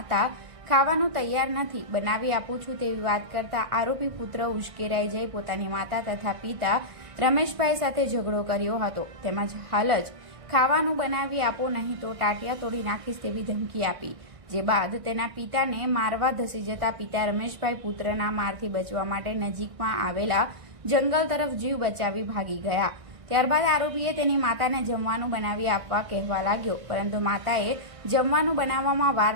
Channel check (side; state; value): left; late; 1.6 ms